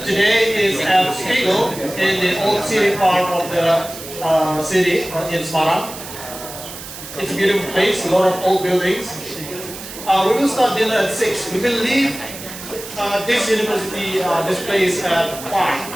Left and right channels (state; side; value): noise; right; hiss, 12 dB below the sound